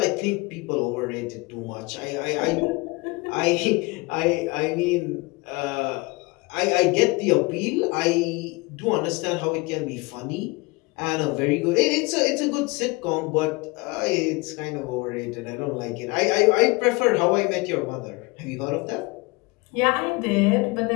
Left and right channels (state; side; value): quieter; right; 25.3 dB